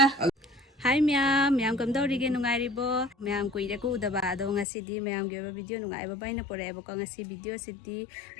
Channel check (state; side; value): drops out; right; at 4.7 s